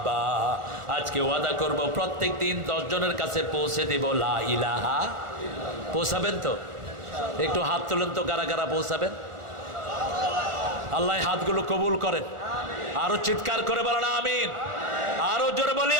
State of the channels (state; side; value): late; left; 1.4 ms